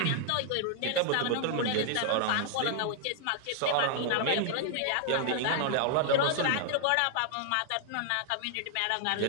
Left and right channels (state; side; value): different; both; correlation 0.00